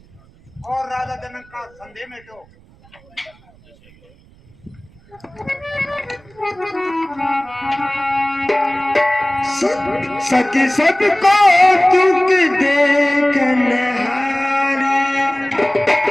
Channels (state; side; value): noise; right; rumble, 28 dB below the sound